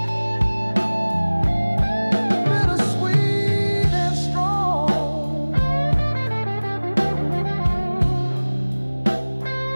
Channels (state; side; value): inverted; both; correlation -1.00